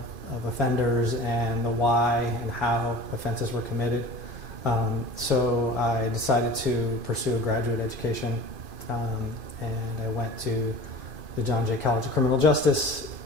offenders and the why and how offenses were committed. So I decided to pursue a graduate education, and I went to the John Jay College of Criminal Justice.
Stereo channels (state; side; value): late; left; 2.5 ms